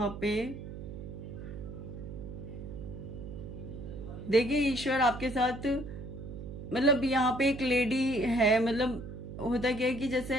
पे देखिए ईश्वर आपके साथ, मतलब यहाँ पे एक लेडी है, मतलब होता क्या है कि जैसे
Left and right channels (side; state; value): right; noise; hum, 10 dB below the sound